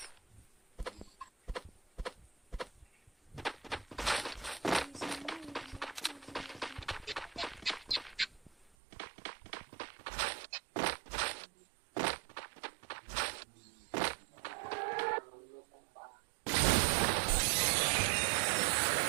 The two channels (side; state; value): left; drops out; at 8.7 s